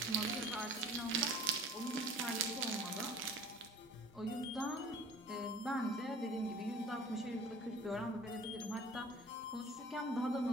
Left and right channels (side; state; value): both; normal; correlation 0.48